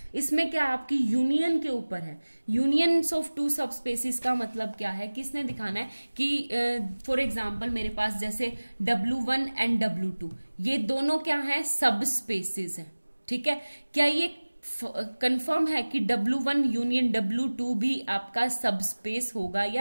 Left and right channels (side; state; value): both; inverted; correlation -1.00